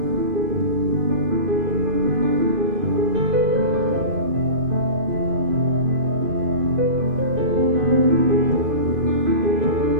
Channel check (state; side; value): late; left; 2.5 ms